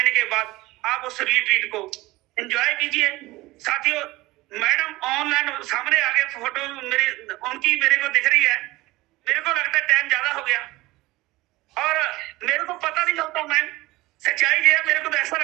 के बाद आप उस रिट्रीट को एंजॉय कीजिए साथियों। मैडम ऑनलाइन सामने आगे फोटो मेरी उनकी मेरे को दिख रही है, मेरे को लगता है टाइम ज्यादा हो गया और मेरे को पता नहीं चलता मैम, सच्चाई ये है, मेरे को तो ऐसा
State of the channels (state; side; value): quieter; left; 19.7 dB